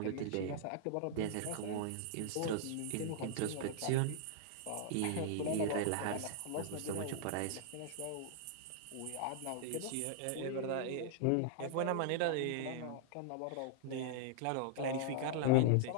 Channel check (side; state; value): both; different; correlation -0.01